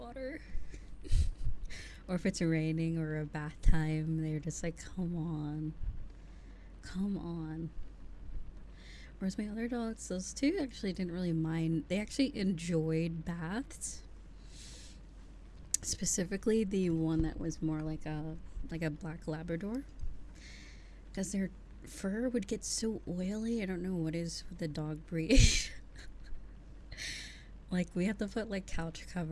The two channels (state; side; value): identical; both; correlation 1.00